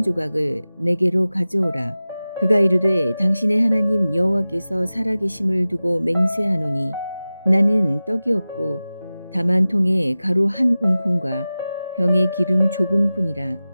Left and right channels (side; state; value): both; inverted; correlation -0.96